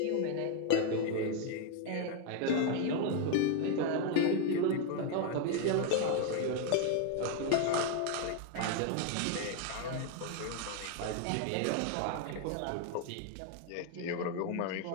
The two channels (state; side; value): different; both; correlation 0.01